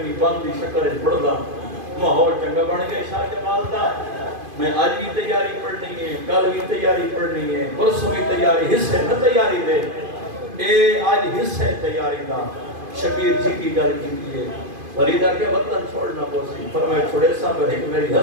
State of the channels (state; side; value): late; left; 2.5 ms